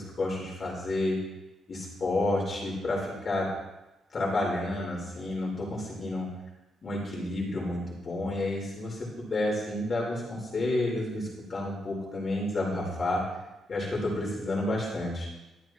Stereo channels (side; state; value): both; normal; correlation 0.83